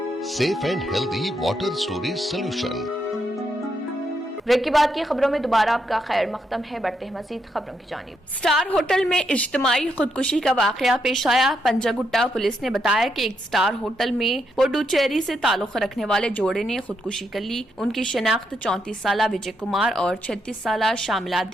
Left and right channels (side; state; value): both; normal; correlation 0.80